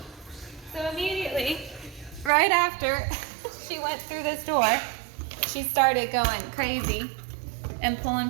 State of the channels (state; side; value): drops out; left; at 2.3 s